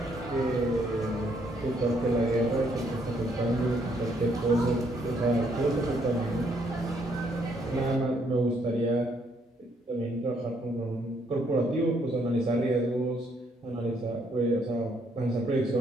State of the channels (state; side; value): normal; both; correlation 0.70